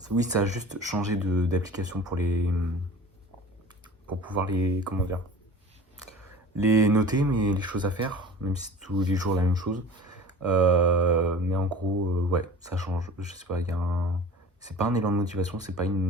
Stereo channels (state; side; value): normal; both; correlation 0.40